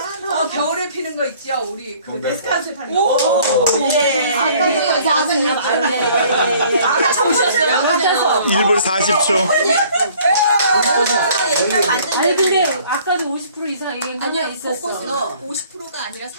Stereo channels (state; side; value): inverted; both; correlation -0.56